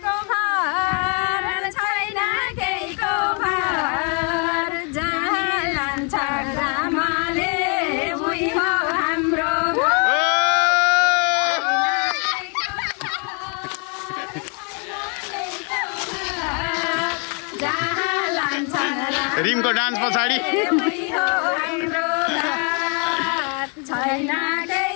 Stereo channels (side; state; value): right; quieter; 37.2 dB